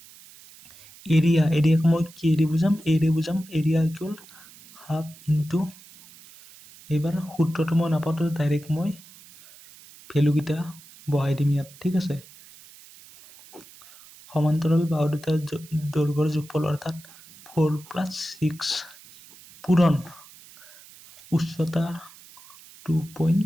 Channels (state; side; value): noise; right; hiss, 22 dB below the sound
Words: এৰিয়াক মই কি এৰি বুজাম এৰিয়া ইকুয়াল হাফ ইনটু এবাৰ সূত্ৰটো মই নাপাতো ডাইৰেক্ট মই ভ্যালু কিটা বহাই দিম ইয়াত ঠিক আছে সমান্তৰাল বাহু দুটাৰ দৈৰ্ঘ্যৰ যোগফল অৰ্থাৎ 4 plus 6 পূৰণ উচ্চতা